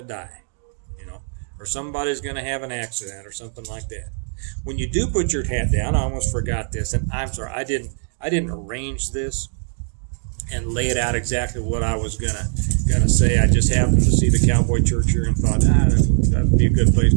die, or somebody's going to have an accident or something like that. When you do put your hat down, I almost forgot this, and I'm sorry, I didn't arrange this and lay it out exactly what I was gonna say. I just happened to see the Cowboy Church here and thought, that'd be a good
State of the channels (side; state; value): left; silent; 56 dB below the other